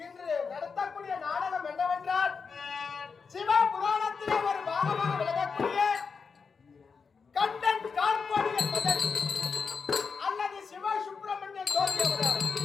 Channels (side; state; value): right; quieter; 5.4 dB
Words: இன்று நடத்தக்கூடிய நாடகம் என்னவென்றால் சிவ புராணத்திலே ஒரு பாகமாக விளங்கக்கூடிய கண்டன் கார்பாடியன் மகன் அல்லது சிவ சுப்பிரமணியன் ஜோதி அவதாரம்.